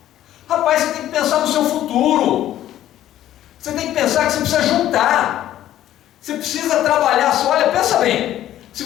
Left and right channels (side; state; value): right; quieter; 12.6 dB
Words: Rapaz, você tem que pensar no seu futuro. Você tem que pensar que você precisa juntar. Você precisa trabalhar. Olha, pensa bem. Se